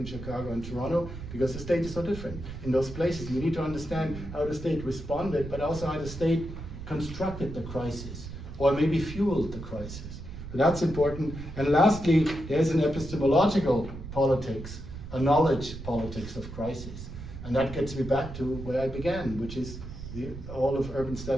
Chicago, and Toronto, because the state is so different in those places. You need to understand how the state responded, but also how the state constructed the crisis, or maybe fueled the crisis. So that's important. And lastly, there's an epistemological politics, a knowledge politics of crisis. And that gets me back to where I began, which is all of urban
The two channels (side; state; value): right; noise; rumble, 10 dB below the sound